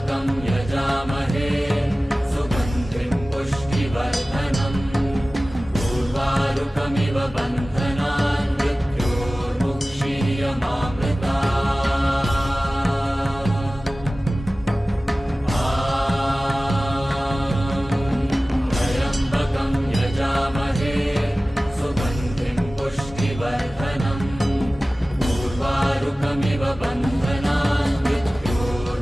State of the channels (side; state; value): both; normal; correlation 0.97